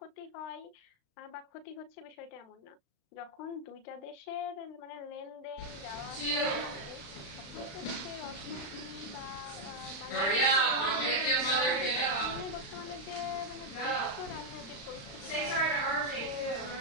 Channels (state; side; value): late; right; 35 ms